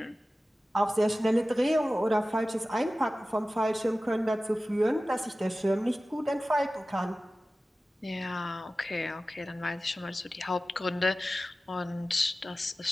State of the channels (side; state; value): both; normal; correlation 0.96